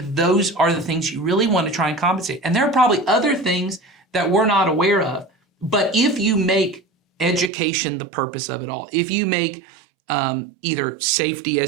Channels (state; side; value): drops out; left; at 7.5 s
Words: those are the things you really want to try and compensate. And there are probably other things that we're not aware of. But if you make education the purpose of it all, if you make either safety,